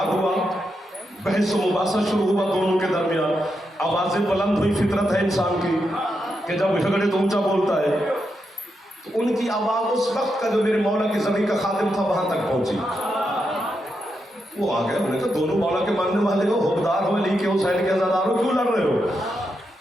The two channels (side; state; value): both; normal; correlation 0.84